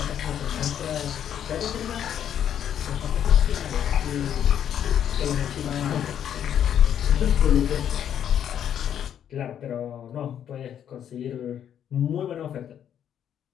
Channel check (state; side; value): quieter; right; 9.5 dB